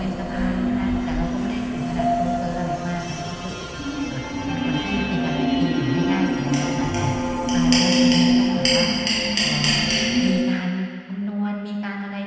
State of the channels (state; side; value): identical; both; correlation 1.00